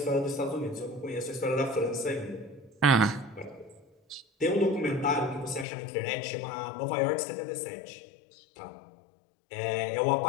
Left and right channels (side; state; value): right; drops out; at 5.7 s